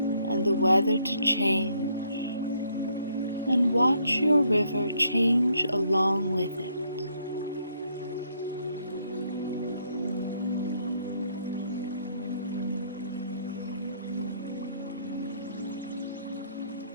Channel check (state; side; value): inverted; both; correlation -0.70